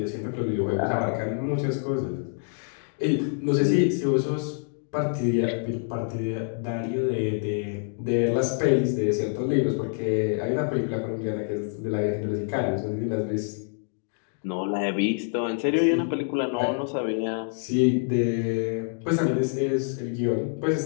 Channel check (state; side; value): silent; right; 61 dB below the other